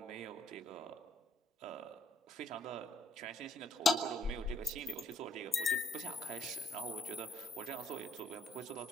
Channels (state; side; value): normal; both; correlation 0.68